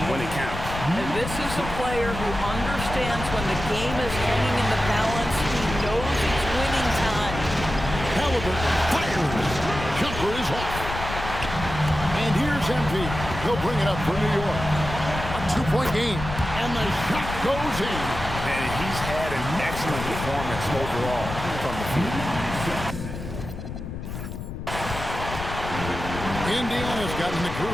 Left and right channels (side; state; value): left; noise; rumble, 8 dB below the sound